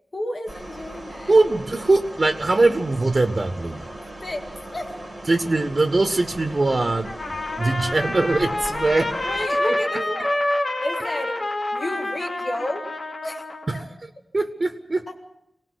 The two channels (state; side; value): normal; both; correlation 0.97